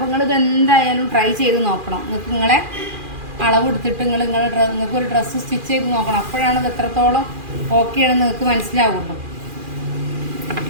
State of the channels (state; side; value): late; left; 2.4 ms